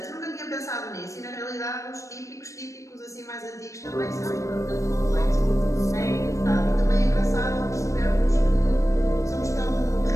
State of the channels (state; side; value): late; right; 0.15 ms